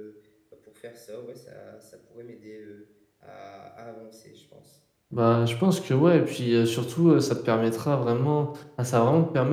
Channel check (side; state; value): both; identical; correlation 1.00